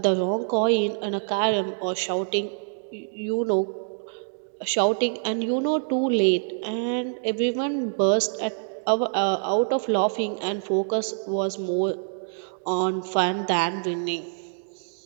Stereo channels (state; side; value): silent; left; digital silence